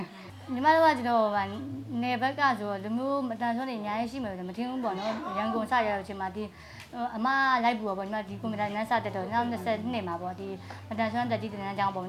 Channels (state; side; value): identical; both; correlation 1.00